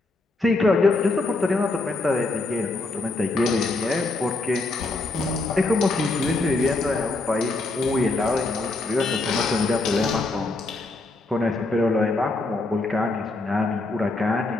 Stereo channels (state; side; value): quieter; right; 3.2 dB